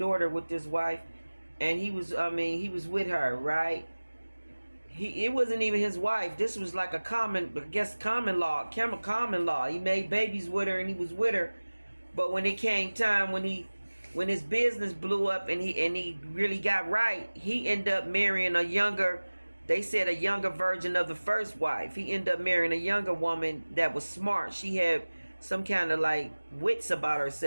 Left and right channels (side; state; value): both; inverted; correlation -1.00